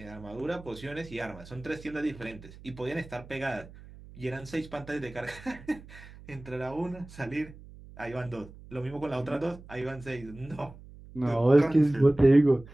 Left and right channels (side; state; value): right; noise; hum, 18 dB below the sound